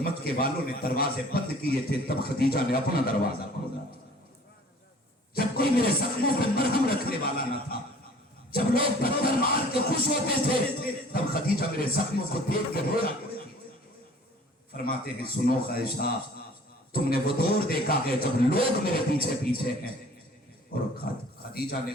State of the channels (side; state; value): both; normal; correlation 0.50